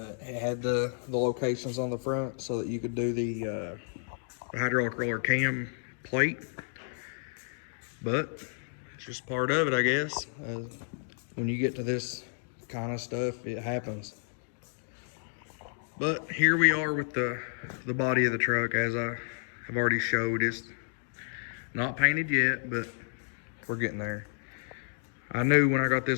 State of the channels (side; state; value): right; silent; digital silence